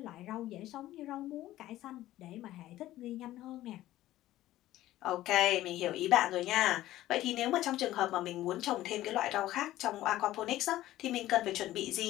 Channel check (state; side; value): quieter; right; 15.0 dB